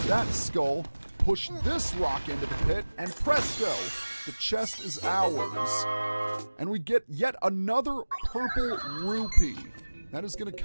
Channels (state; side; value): inverted; both; correlation -1.00